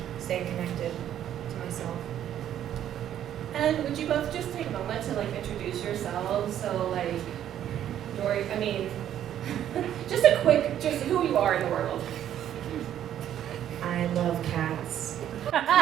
staying connected to myself. And would you both just take a moment to like introduce yourselves? So like, Dori, I mean, just a quick, just who you are in the world. I love cats.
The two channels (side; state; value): left; quieter; 10.8 dB